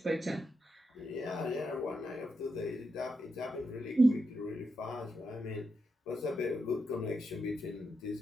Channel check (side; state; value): both; normal; correlation 0.85